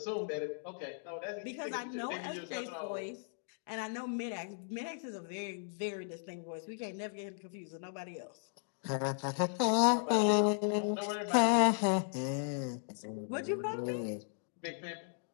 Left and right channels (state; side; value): silent; right; digital silence